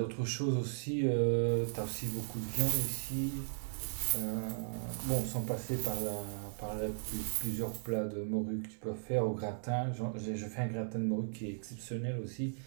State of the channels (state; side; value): silent; left; digital silence